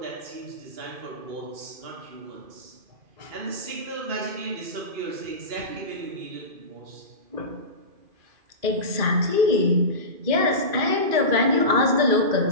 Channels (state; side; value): late; left; 2.4 ms